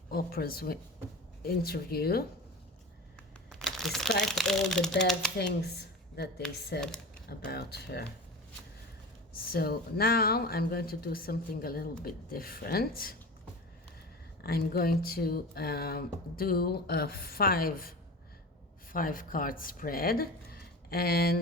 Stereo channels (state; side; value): normal; both; correlation 0.31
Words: Oprah's interview, despite all the bad things that they said about her? So now I'm going to do something a little bit different. I'm going to do a five card spread,